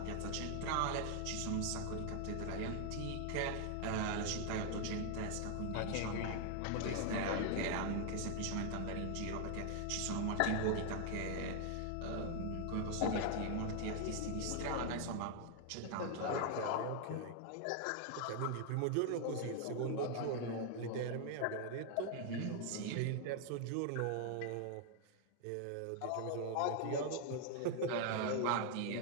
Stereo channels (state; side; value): different; both; correlation 0.00